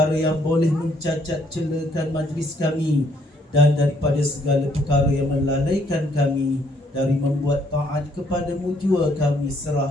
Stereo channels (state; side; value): normal; both; correlation 0.68